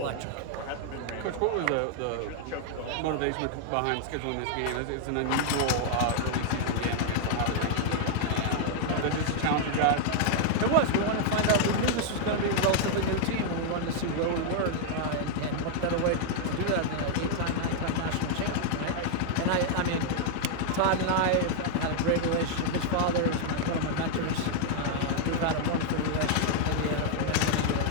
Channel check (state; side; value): different; both; correlation 0.00